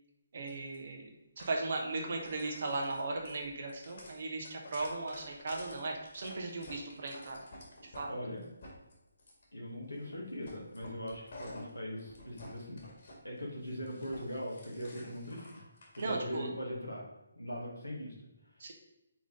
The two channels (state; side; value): inverted; both; correlation -0.81